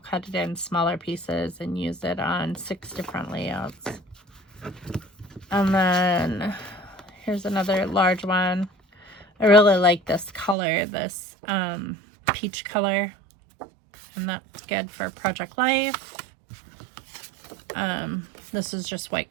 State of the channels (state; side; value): drops out; left; at 10.6 s